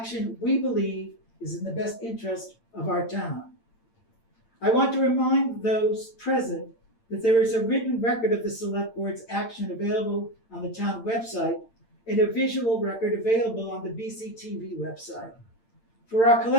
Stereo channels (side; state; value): right; late; 8.8 ms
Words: we believe is in the best interest of our town. I want to remind those present that there is a written record of the Select Board's action available on the town website and a visual record available on the BCTV website. For our